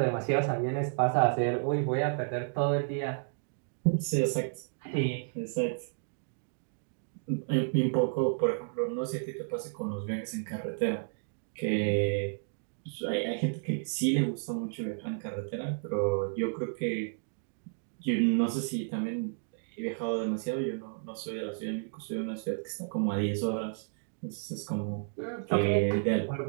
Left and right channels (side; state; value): left; silent; digital silence